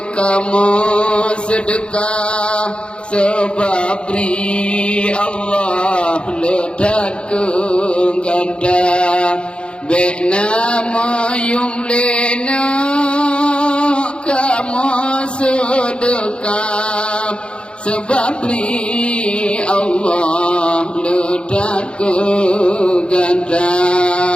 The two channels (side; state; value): right; late; 0.056 ms